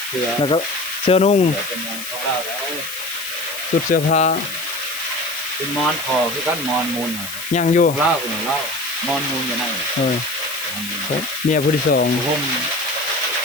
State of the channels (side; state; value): left; noise; hiss, 9 dB below the sound